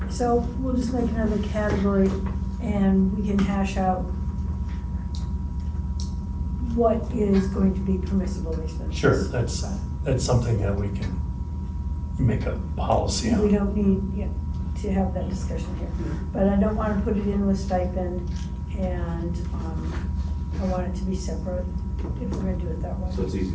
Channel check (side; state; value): both; identical; correlation 1.00